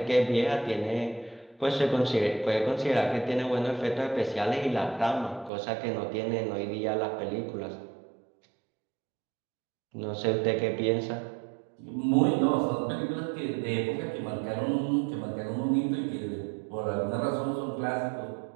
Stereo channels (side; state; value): left; drops out; at 5.5 s